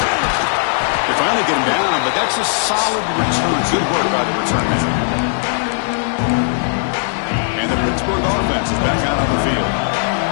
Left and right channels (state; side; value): silent; right; digital silence